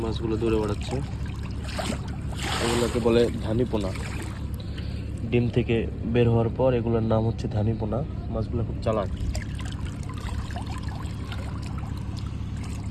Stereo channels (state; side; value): identical; both; correlation 1.00